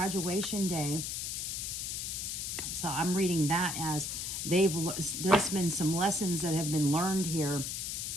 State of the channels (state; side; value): noise; left; hiss, 3 dB below the sound